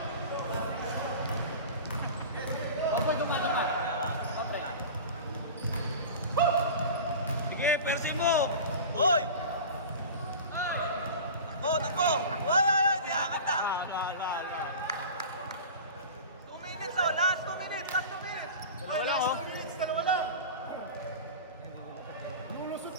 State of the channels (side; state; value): both; inverted; correlation -0.34